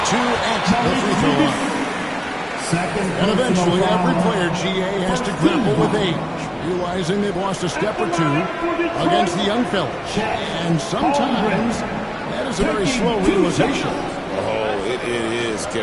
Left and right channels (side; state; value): both; identical; correlation 1.00